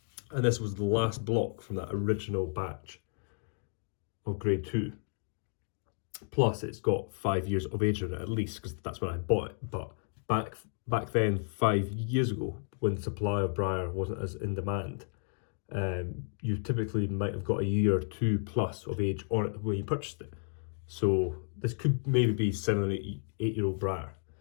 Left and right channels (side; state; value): right; silent; 56 dB below the other